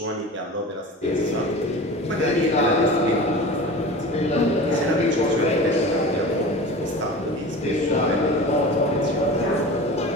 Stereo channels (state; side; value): normal; both; correlation 0.34